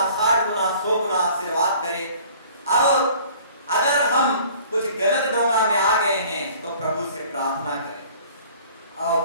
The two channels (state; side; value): inverted; both; correlation -0.51